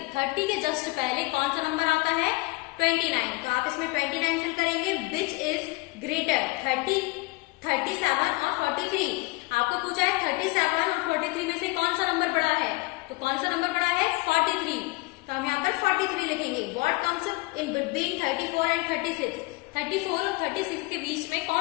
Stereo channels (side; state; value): right; quieter; 24.4 dB